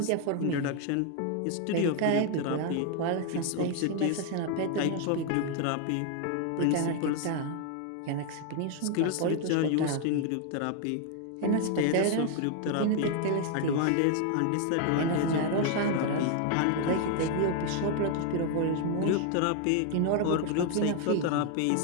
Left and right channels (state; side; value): different; both; correlation 0.01